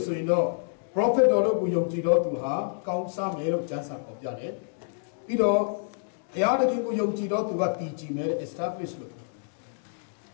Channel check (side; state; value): right; silent; digital silence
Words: yin do prophet တော်တို့ကိုယုံကြည်တော်သူဟာကောင်းစားမယ်လို့ကျမ်းစာဖော်ပြတယ်ပြီးတော့ဘုရားသခင်ကိုယုံကြည်တော်သူကတည်ကြည်မယ် establish လို့